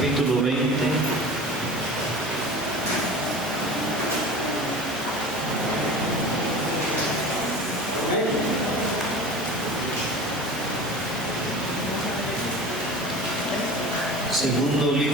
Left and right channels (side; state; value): both; normal; correlation 0.36